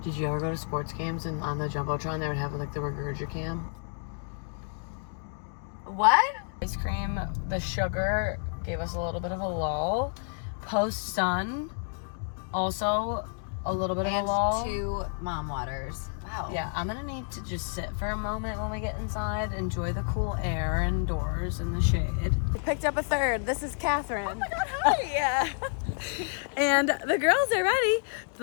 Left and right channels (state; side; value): silent; right; 55 dB below the other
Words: Did you ever go to sports games and on the Jumbotron they would have like the Regurgicam? What? Ice cream, the sugar gave us a little bit of a lull. Post sun, also a little bit of a lull. 2 mom waters. Wow. Yeah, I'm gonna need to just sit for a moment when we get inside, enjoy the cool air indoors in the shade. We picked up a third. This is Catherine. Oh my God, hi! Yeah. And the girls are ready.